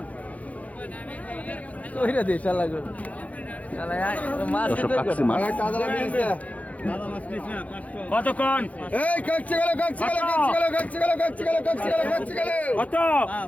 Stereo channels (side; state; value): right; late; 0.069 ms